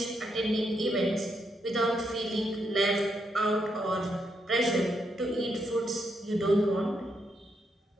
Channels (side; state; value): both; normal; correlation 0.79